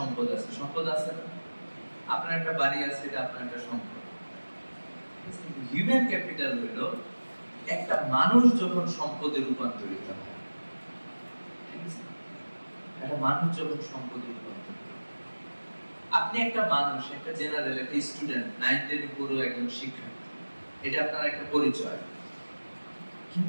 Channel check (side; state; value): both; inverted; correlation -1.00